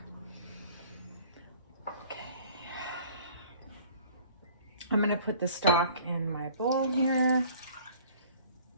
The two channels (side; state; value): both; inverted; correlation -0.51